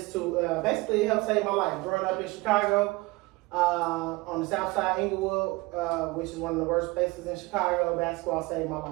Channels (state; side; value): quieter; left; 22.7 dB